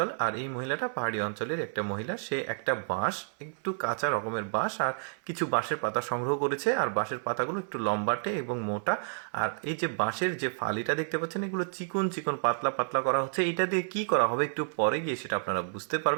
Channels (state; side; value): silent; left; 56 dB below the other